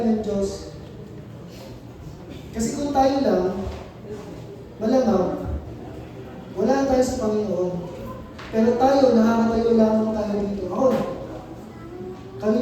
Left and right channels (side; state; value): both; identical; correlation 1.00